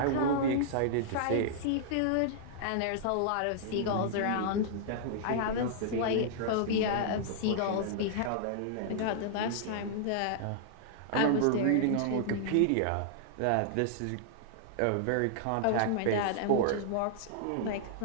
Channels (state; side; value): different; both; correlation -0.01